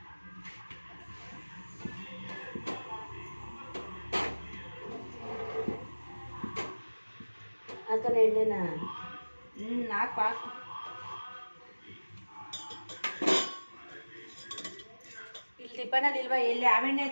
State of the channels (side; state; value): both; inverted; correlation -1.00